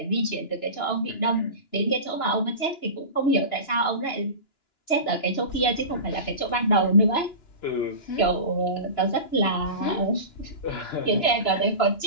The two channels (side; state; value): right; late; 2.9 ms